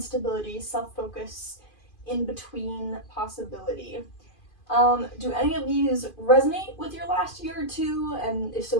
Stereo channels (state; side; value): late; right; 2.5 ms